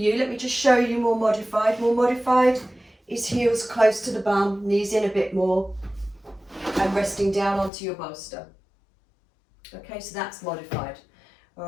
Let me just show you more modified. More modified is heels close to the bum, knees in a bit more, and resting down onto your bolster. Okay, so that's modified.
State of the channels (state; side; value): drops out; right; at 7.7 s